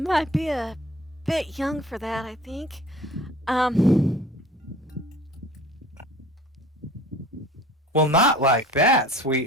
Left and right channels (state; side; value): normal; both; correlation 0.46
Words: be a bit young for that, I think. Well, not like that,